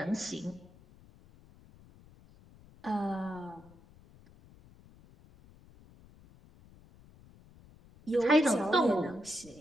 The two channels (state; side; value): noise; left; rumble, 25 dB below the sound